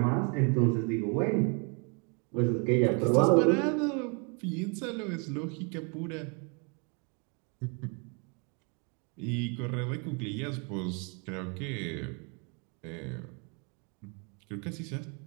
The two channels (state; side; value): quieter; left; 35.4 dB